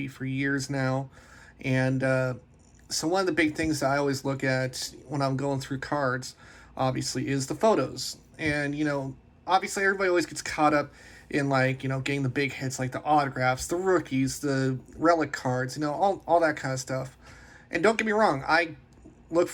for years now. And so one of the big things that I always look at when I'm going through cards, obviously, is the photos. And, obviously everybody always gets caught up in getting the big hits like the autographs, the rookies, the relic cards, all that kind of stuff. And don't get me wrong, I look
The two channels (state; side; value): identical; both; correlation 1.00